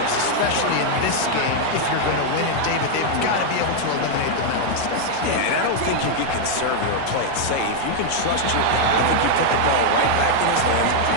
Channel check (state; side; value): different; both; correlation 0.00